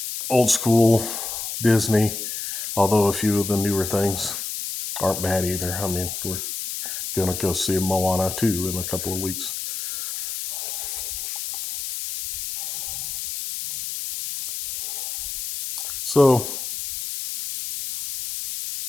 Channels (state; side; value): noise; left; hiss, 5 dB below the sound